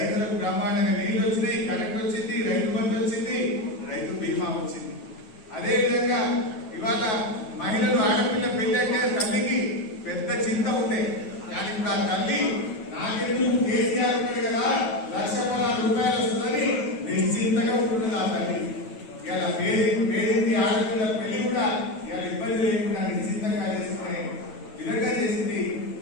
బ్రహ్మాండంగా నీళ్లు వచ్చినాయి, కరెంట్ వచ్చింది, రైతు బంధు వచ్చింది, రైతు బీమా వచ్చింది. అదేవిధంగా ఇవాళ మహిళలు ఆడపిల్ల పెళ్లి అంటే తల్లికి పెద్ద చింత ఉండే. కానీ ఇప్పుడు ఆ తల్లి నాకెందుకు కేసీఆర్ ఉన్నాడు కదా 1,16,000 వస్తుందని నిశ్చింతగా ఉంటుంది ఆ తల్లి. ఇలా పేరింటి ఆడపిల్ల పెళ్లి కూడా ఇలా ఇబ్బంది లేకుండా నిశ్చింతంగా చేసుకునే విధంగా చేసింది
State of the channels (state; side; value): late; right; 9.3 ms